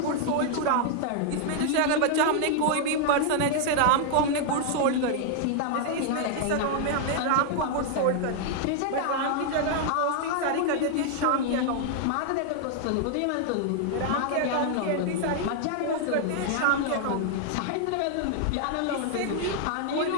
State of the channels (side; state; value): both; different; correlation -0.01